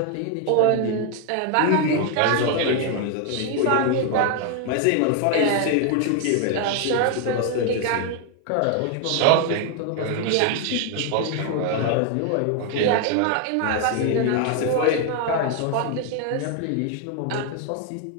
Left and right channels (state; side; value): different; both; correlation 0.00